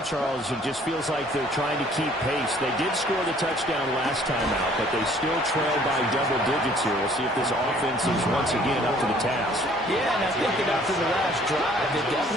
Charles, it just feels like they're trying to keep pace. They did score the touchdown last time out, but they still trail by double digits here. We'll see if this offense is once again up to the task. Yeah, and I think that after the last drive, they're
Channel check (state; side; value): normal; both; correlation 0.57